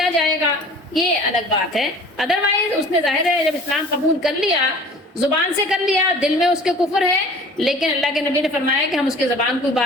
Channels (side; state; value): both; normal; correlation 0.46